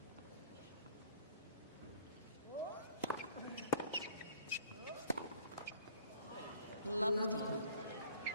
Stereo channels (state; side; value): inverted; both; correlation -0.53